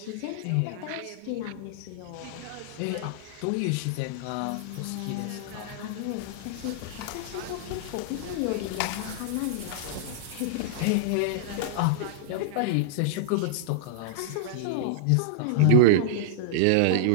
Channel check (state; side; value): different; both; correlation -0.02